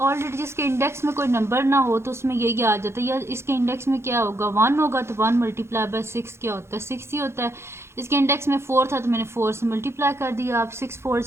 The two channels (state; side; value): late; left; 0.13 ms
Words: जिसके इंडेक्स में कोई नंबर ना हो तो उसमें यही आ जाता है। या इसके इंडेक्स में क्या होगा 1 होगा, तो 1 मल्टीप्लाई बाय 6 क्या होता है 6 ही होता है। इसके इंडेक्स में 4 था तो मैंने 4 से मल्टीप्लाई कर दिया। अब 6 4